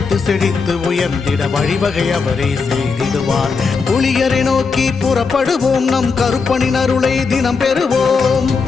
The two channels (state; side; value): quieter; right; 4.9 dB